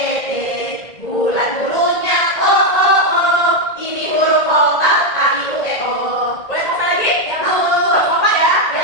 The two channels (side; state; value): right; late; 1.9 ms